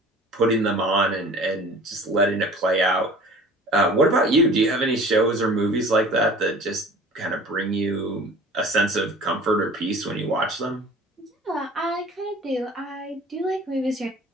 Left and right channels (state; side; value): normal; both; correlation 0.45